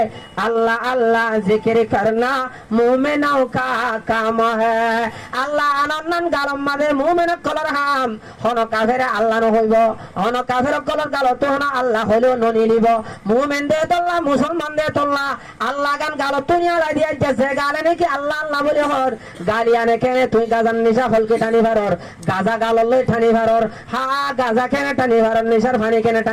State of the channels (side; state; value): both; identical; correlation 1.00